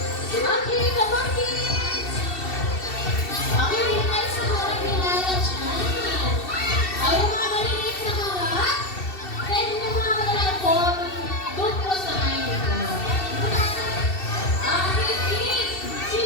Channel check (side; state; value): right; late; 2.7 ms